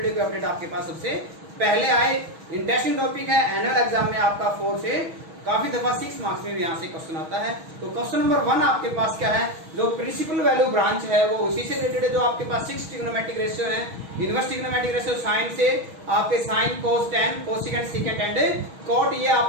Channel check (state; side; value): late; left; 6.3 ms